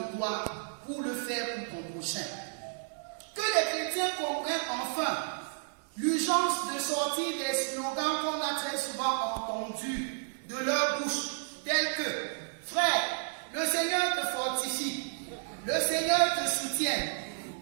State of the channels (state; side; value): silent; left; digital silence